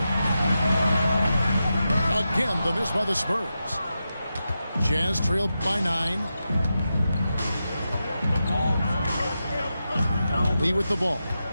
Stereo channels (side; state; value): both; inverted; correlation -0.89